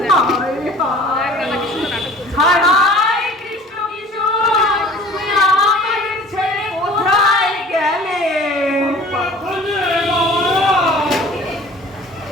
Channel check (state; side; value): normal; both; correlation 0.47